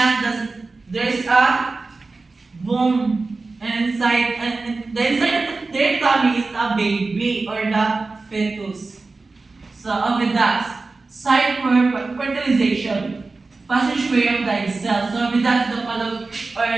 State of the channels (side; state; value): left; quieter; 3.7 dB